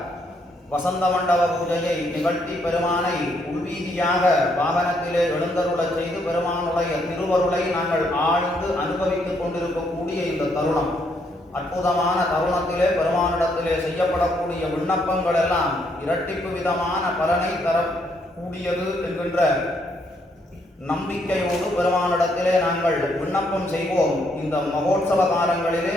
வசந்த மண்டப பூஜையை நிகழ்த்தி பெருமானை உள்வீதியாக வாகனத்திலே எழுந்தருளச் செய்து பெருமானுடைய திருவருளை நாங்கள் ஆழ்ந்து அனுபவித்துக் கொண்டிருக்கக்கூடிய இந்த தருணம், அற்புதமான தருணத்திலே பெருமானிடத்திலே செய்யப்படக்கூடிய விண்ணப்பங்கள் எல்லாம் இரட்டிப்பு விதமான பலனை தரக்கூடியது என்கின்ற நம்பிக்கையோடு பெருமானிடத்திலே நாங்கள் விண்ணப்பம் செய்வோம். இந்த மகோத்சவ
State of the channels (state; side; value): normal; both; correlation 0.73